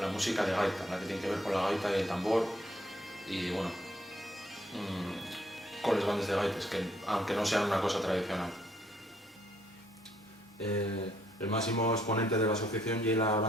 música de gaita, la que tiene que ver con la gaita y el tambor, y bueno, con las bandas de gaites, que aunque no sean una cosa tradicional. El máximo exponente de la asociación es la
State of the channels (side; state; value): both; normal; correlation 0.69